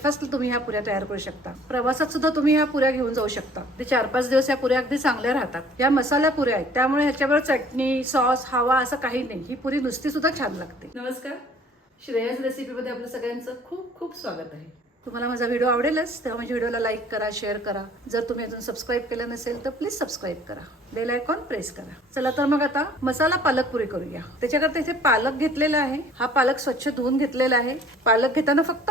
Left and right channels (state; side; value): normal; both; correlation 0.54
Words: तुम्ही ह्या पुऱ्या तयार करू शकता, प्रवासात सुद्धा तुम्ही ह्या पुऱ्या घेऊन जाऊ शकता। ते 4-5 दिवस या पुऱ्या अगदी चांगल्या राहतात। या मसाला पुऱ्या आहेत त्यामुळे ह्याच्यावर चटणी, सॉस, हवा असं काही नाही। ही पुरी नुसती सुद्धा छान लागते। नमस्कार, श्रेयस रेसिपीमध्ये आपलं सगळ्यांचं खूप खूप स्वागत आहे। तुम्हाला माझा व्हिडिओ आवडेलच तेव्हा माझ्या व्हिडिओला लाईक करा, शेअर करा। जर तुम्ही अजून सबस्क्राईब केलं नसेल तर प्लीज सबस्क्राईब करा, बेल आयकॉन प्रेस करा। चला तर मग आता मसाला पालक पुरी करूया। त्याच्याकरता इथे पालक घेतलेला आहे। हा पालक स्वच्छ धुवून घेतलेला आहे। पालक घेताना फक्त